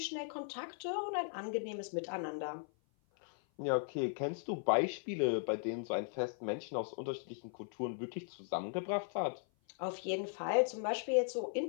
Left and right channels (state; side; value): silent; right; 52 dB below the other